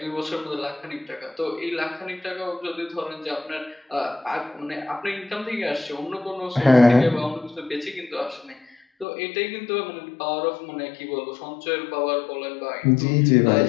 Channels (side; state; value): right; drops out; at 9.1 s